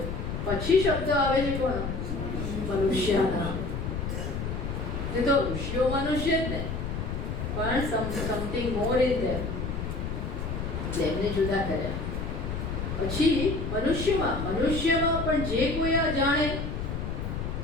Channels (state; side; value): noise; left; rumble, 4 dB below the sound